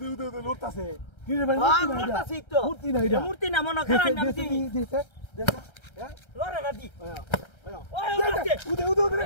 লোটতাছে কি রে ভাই লোটতাছি তো মূর্তি না এটা মূর্তি না মনো কারণ আমি দিই দিছে হ্যাঁ লরে না দি ওই উদে রে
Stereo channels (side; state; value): right; late; 1.3 ms